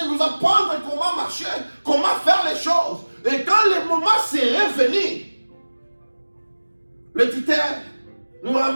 nous apprendre comment marcher, comment faire les choses. Et quand le moment serait venu, le tuteur nous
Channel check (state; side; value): inverted; both; correlation -1.00